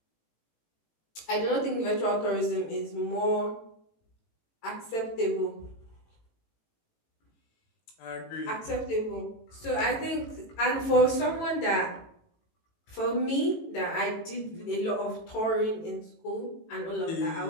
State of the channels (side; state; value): right; late; 18 ms